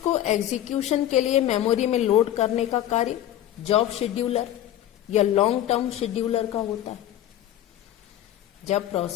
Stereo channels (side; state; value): right; quieter; 12.2 dB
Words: एग्जीक्यूशन के लिए मेमोरी में लोड करने का कार्य जॉब शेड्यूलर या लॉन्ग टर्म शेड्यूलर का होता है। जब